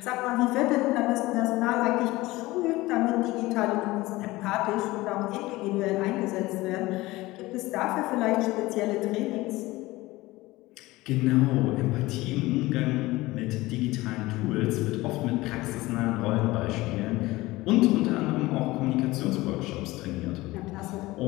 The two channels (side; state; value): right; quieter; 19.4 dB